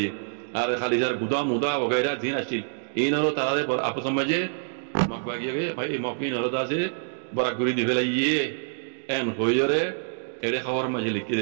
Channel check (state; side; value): silent; left; digital silence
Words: আর খালি যার গুদা মুদা বগেরা দিন আসছিল ইনরো তারারে আপস সমাজে মকবাগিয়ে ভাই মকিন হরদাসে বরাগুরি দিবেলাইয়ে এন হইরে এড়ে খাওয়ার মাঝে লিখে